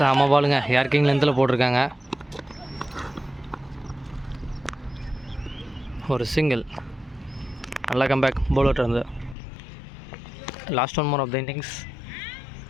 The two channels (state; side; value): drops out; right; at 9.3 s